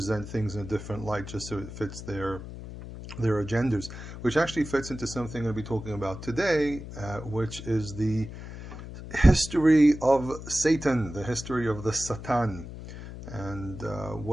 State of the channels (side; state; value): left; noise; hum, 11 dB below the sound